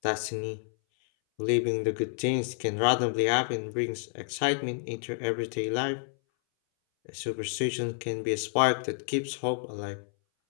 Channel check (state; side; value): silent; right; 58 dB below the other